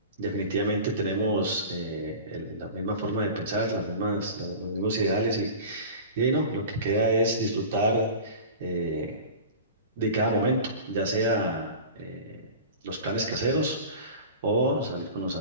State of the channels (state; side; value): inverted; both; correlation -0.36